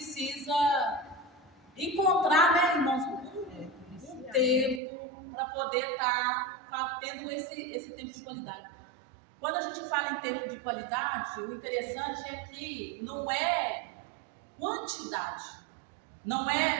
encontrar, né, irmãos, um tempo para poder estar tendo esse tempo de qualidade. Quando a gente fala em tempo de qualidade, o interessante é que não é quantidade. Não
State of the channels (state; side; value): drops out; left; at 4.8 s